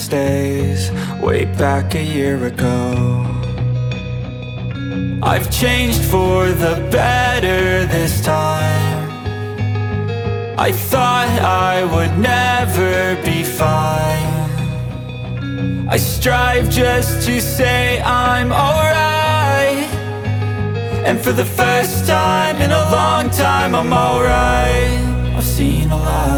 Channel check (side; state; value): both; identical; correlation 1.00